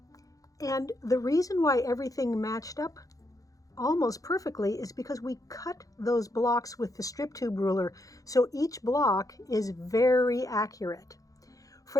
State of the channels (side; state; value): right; late; 0.17 ms